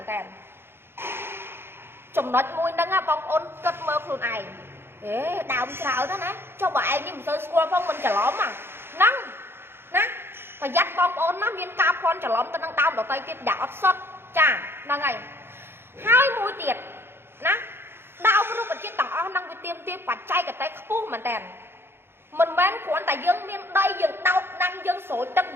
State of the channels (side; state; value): left; late; 0.11 ms